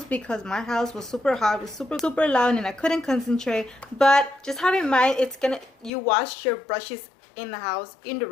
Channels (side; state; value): right; drops out; at 5.9 s